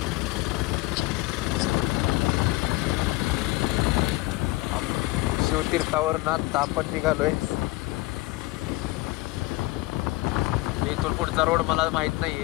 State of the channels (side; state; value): right; quieter; 20.1 dB